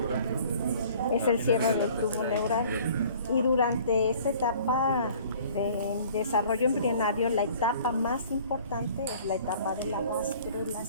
¿no? Es el cierre del tubo neural. Y durante esta etapa de desarrollo embrionario, la etapa más importante es la etapa de la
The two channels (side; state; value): both; inverted; correlation -0.52